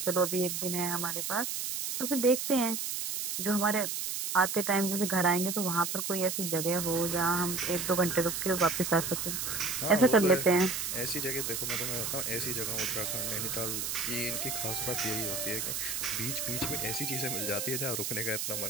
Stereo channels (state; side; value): noise; right; hiss, 2 dB below the sound